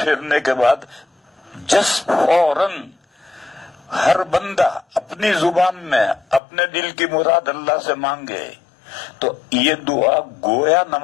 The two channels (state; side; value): drops out; right; at 6.4 s